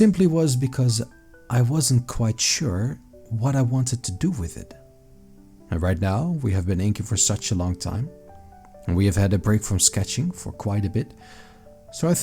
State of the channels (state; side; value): identical; both; correlation 1.00